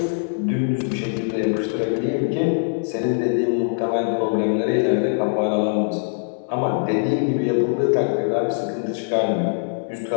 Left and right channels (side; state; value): right; silent; digital silence